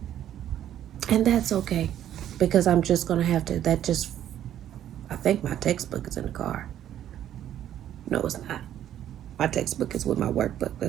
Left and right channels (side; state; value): left; quieter; 11.1 dB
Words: And that's okay. Because I'm just going to have to, I think my textbook is in the car. No, it's not. My textbook is with my workbook.